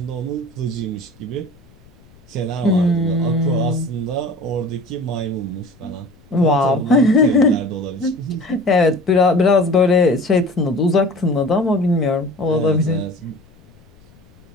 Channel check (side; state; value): left; noise; rumble, 28 dB below the sound